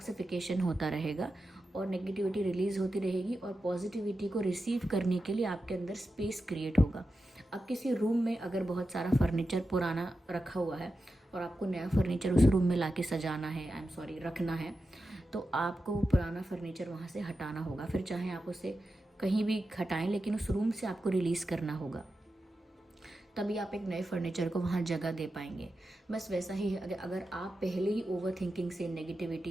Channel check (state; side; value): normal; both; correlation 0.91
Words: होता रहेगा और नेगेटिविटी रिलीज़ होती रहेगी और पॉजिटिविटी को रिसीव करने के लिए आपके अंदर स्पेस क्रिएट होगा। अब किसी रूम में अगर बहुत सारा फर्नीचर पुराना रखा हुआ है और आपको नया फर्नीचर उस रूम में लाके सजाना है, आई एम सॉरी रखना है, तो आपको वो पुराना फर्नीचर वहाँ से हटाना होगा। फिर चाहे आप उसे कहीं भी हटाएं, लेकिन उस रूम से आपको रिलीज़ करना होगा, तभी आप एक नए फर्नीचर को वहाँ जगह दे पाएंगे। बस वैसा ही है, अगर आप पहले ही ओवर थिंकिंग से,